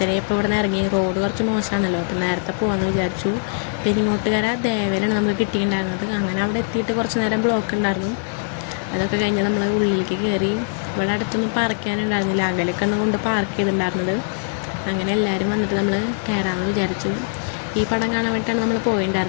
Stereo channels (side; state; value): right; silent; digital silence